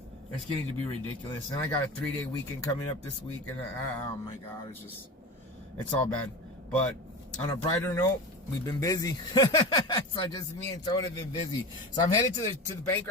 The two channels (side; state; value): both; normal; correlation 0.27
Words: it's getting to be ridiculous. And I got a 3-day weekend coming up this week, and oh my God, it's all bad. But on a brighter note, we've been busy. So just me and Tone have been busy. So I'm headed to the bank